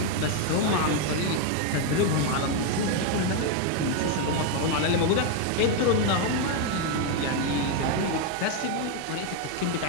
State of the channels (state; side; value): different; both; correlation 0.01